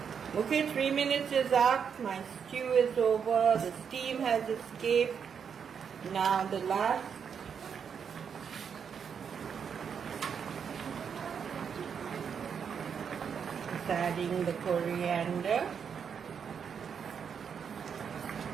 Okay, 3 minutes is up. My stew is over. The steam has escaped. Now the last. Adding the coriander,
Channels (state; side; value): quieter; left; 7.0 dB